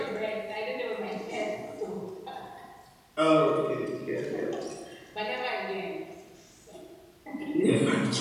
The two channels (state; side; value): identical; both; correlation 1.00